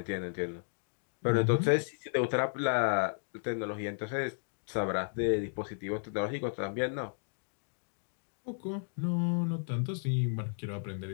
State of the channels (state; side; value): silent; right; digital silence